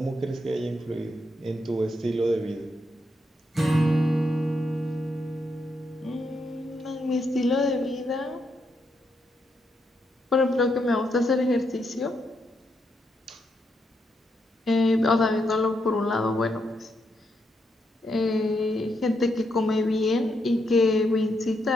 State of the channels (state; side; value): normal; both; correlation 0.80